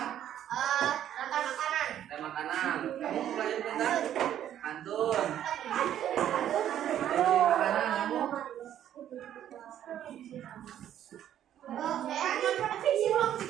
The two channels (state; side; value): quieter; left; 10.9 dB